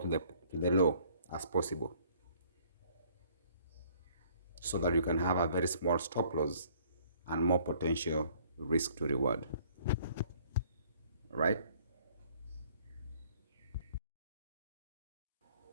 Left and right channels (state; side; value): inverted; both; correlation -0.59